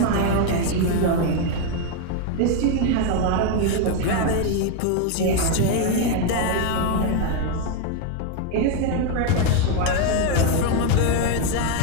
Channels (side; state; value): both; different; correlation 0.01